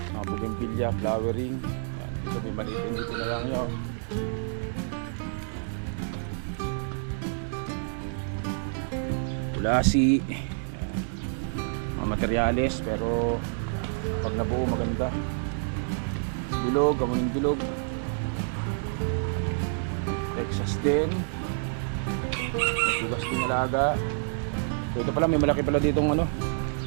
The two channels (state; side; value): silent; left; 59 dB below the other